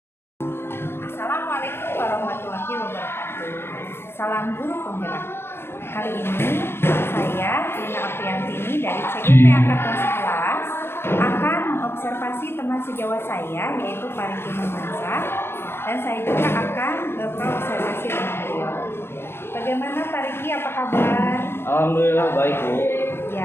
warahmatullahi wabarakatuh. Salam guru penggerak. Hari ini saya Lina Apriantini dari CGP Angkatan 11 akan mengobservasi teman sejawat saya yaitu Pariki Mansa, dan saya juga akan berobservasi dengan beliau. Bagaimana Pariki, apa kabar? Alhamdulillah baik, Bu.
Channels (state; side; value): late; right; 0.11 ms